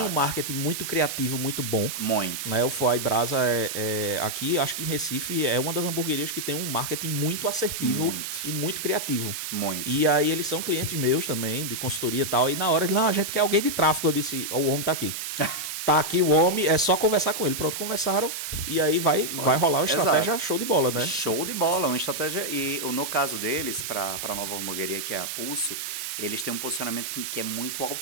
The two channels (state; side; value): noise; right; hiss, 5 dB below the sound